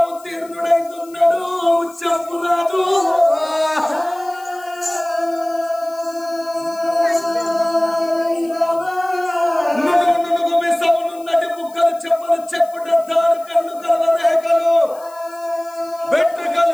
ఉత్తీర్ణుడైతున్నాడు ముచ్చంపురాజు. చెప్పలు చెప్పుడద్దారు కళ్ళు కలవరేఖలు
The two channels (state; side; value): noise; left; hiss, 24 dB below the sound